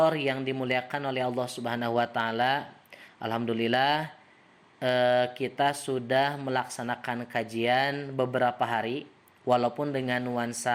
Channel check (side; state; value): both; identical; correlation 1.00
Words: yang dimuliakan oleh Allah Subhanahu wa taala. Alhamdulillah kita sudah melaksanakan kajian beberapa hari walaupun dengan